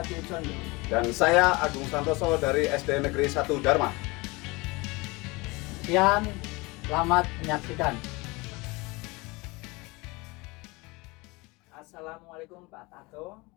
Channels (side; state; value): right; quieter; 24.5 dB